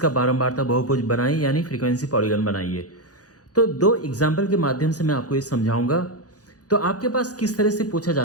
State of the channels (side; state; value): right; late; 0.67 ms